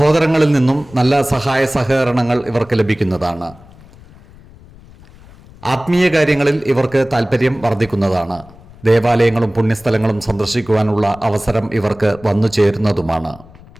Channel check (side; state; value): left; noise; rumble, 23 dB below the sound